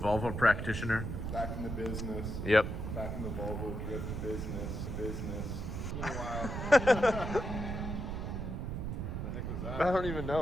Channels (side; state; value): right; noise; rumble, 4 dB below the sound